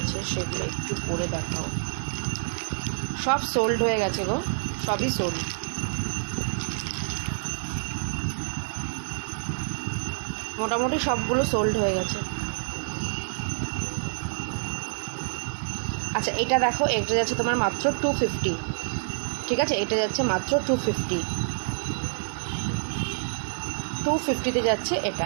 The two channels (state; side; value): silent; left; 60 dB below the other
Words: সেগুলো একটু পরে দেখাও। সব সোল্ড হয়ে গেছে গো, সবই সোল্ড। মোটামুটি সবগুলো সোল্ড হয়ে গেছে। আচ্ছা এটা দেখো, এটা যাচ্ছে তোমার মাত্র 250। ঠিক আছে, এটা যাচ্ছে মাত্র 250-তে যাচ্ছে